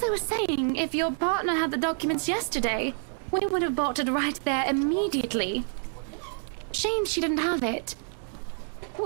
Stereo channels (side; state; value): left; silent; 59 dB below the other